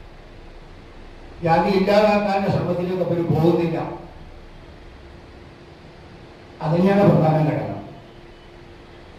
ജാതി ഇല്ലാതാക്കാനുള്ള ശ്രമത്തിലേക്ക് അവർ പോകുന്നില്ല. അതുതന്നെയാണ് പ്രധാന ഘടകം.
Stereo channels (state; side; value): identical; both; correlation 1.00